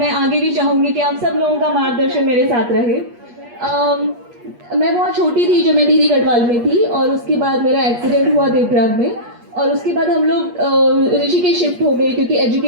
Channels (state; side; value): late; left; 8.4 ms